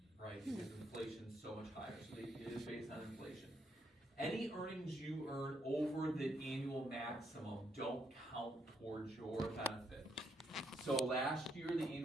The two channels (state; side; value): normal; both; correlation 0.75